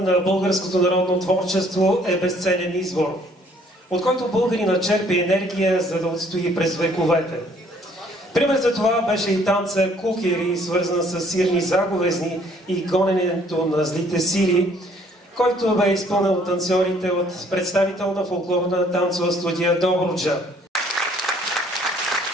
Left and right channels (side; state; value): both; normal; correlation 0.61